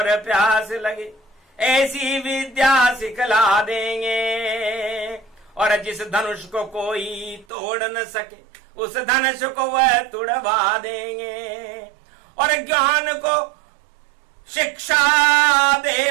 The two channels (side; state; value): left; drops out; at 7.5 s